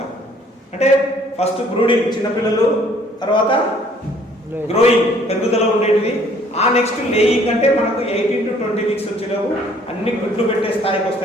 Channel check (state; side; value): normal; both; correlation 0.59